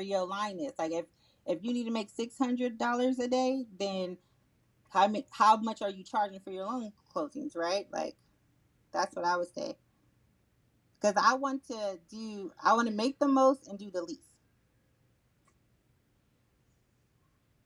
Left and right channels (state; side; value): identical; both; correlation 1.00